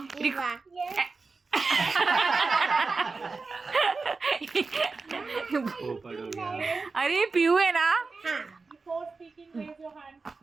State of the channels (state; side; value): quieter; left; 4.2 dB